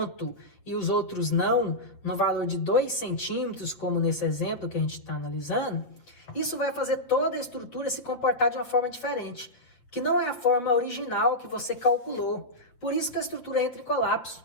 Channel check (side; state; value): right; late; 8.0 ms